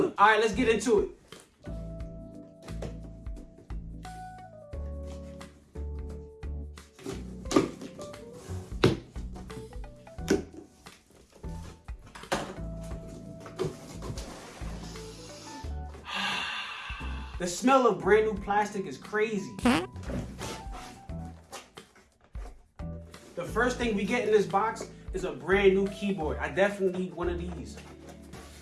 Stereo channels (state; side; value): identical; both; correlation 1.00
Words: All right, let's get into it. The smell of brand new plastic is crazy. The first thing we get in this box is a brand new keyboard. I definitely need one of these.